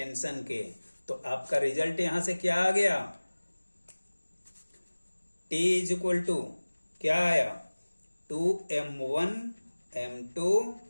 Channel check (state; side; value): inverted; both; correlation -1.00